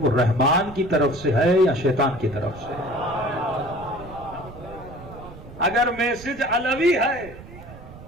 رحمان کی طرف سے ہے یا شیطان کی طرف سے. اگر میسج علوی ہے،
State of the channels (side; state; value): right; noise; rumble, 16 dB below the sound